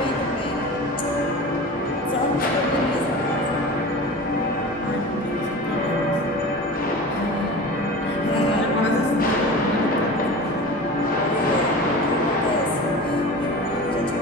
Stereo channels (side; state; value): both; normal; correlation 0.34